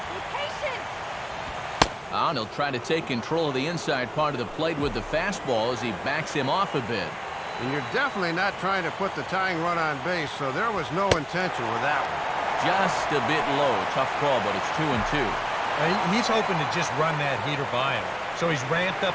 And he'll try to take control of the inside part of the plate with the fastball as he backs him off a bit. And you're definitely not trying to put the tying run on base, so there was no intention with that one. Just a bit low. Tough call, but it's 2-2. He's hoping to just run that heater by him. So he's ramped up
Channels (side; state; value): both; identical; correlation 1.00